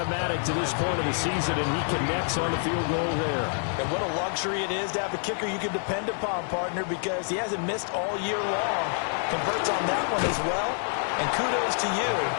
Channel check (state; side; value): silent; right; 60 dB below the other